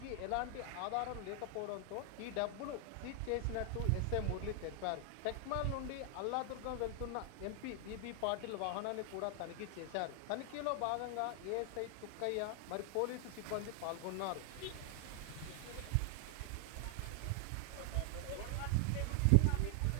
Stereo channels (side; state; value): both; different; correlation 0.00